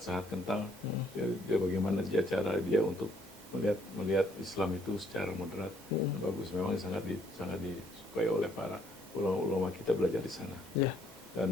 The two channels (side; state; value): both; normal; correlation 0.67